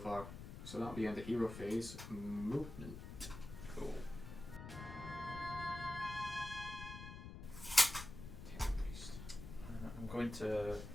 So that'll be end of hero phase. Movement. Cool. I'm going to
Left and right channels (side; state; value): left; noise; rumble, 10 dB below the sound